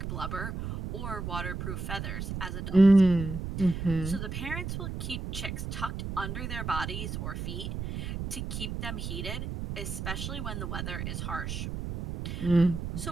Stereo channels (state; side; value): noise; right; rumble, 5 dB below the sound